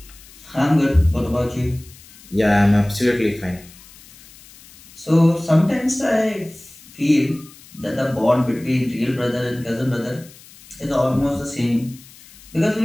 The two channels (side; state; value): left; noise; hiss, 22 dB below the sound